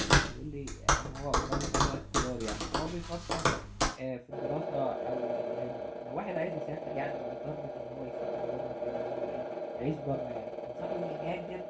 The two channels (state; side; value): identical; both; correlation 1.00